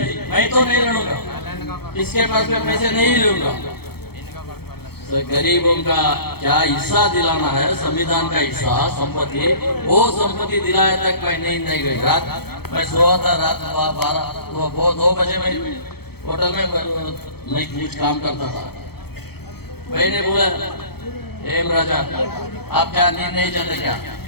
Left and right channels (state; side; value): late; right; 0.96 ms